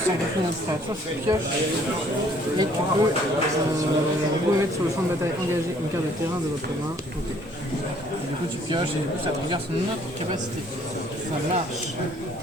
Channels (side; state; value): both; normal; correlation 0.60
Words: sans calculer notre frais. Soit tu pioches, et tu peux remettre sur le champ de bataille engagé une carte de terrain de votre main. Ok. Et du coup, tu pioches et du coup, ça te regarde sur notre capacité. Ça marche.